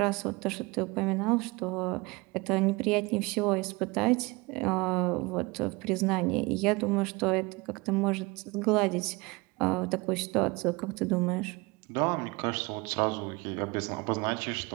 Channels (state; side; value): quieter; left; 25.0 dB